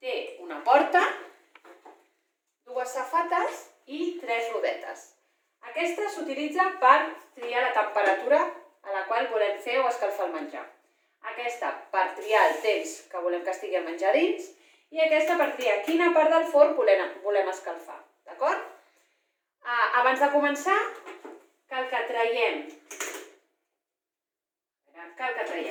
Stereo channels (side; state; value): both; identical; correlation 1.00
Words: Té una porta, dues safates i 3 rodetes. Aquesta s'utilitza per triar la temperatura a la qual volem fer o escalfar el menjar. Aquesta per triar el temps que volem que estigui el menjar dins i aquesta per triar quina part del forn volem escalfar. D'acord? Abans de començar, cal que traiem